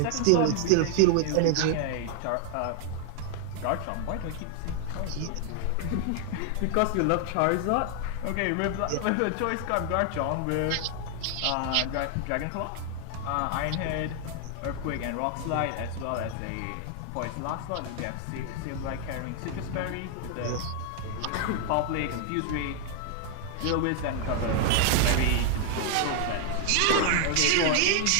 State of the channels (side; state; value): both; different; correlation 0.00